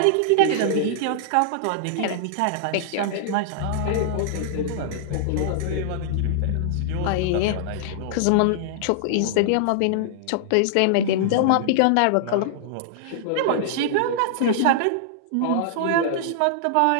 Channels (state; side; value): different; both; correlation -0.01